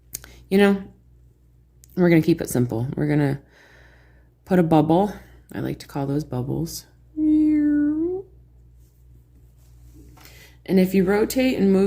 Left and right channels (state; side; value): identical; both; correlation 1.00